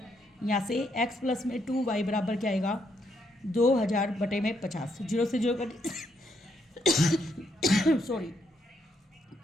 यहाँ से x प्लस में 2y बराबर क्या आएगा 2000 बटे में 50, 0 से 0 कट सॉरी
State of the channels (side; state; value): both; normal; correlation 0.75